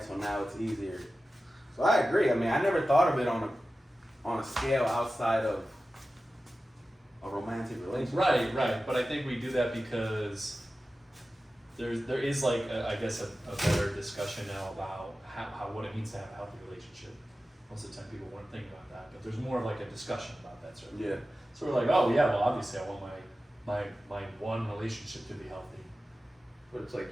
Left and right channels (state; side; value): normal; both; correlation 0.94